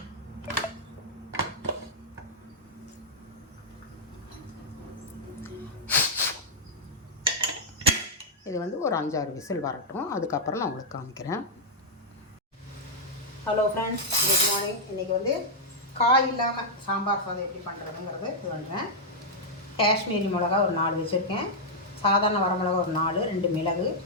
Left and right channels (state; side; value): normal; both; correlation -0.05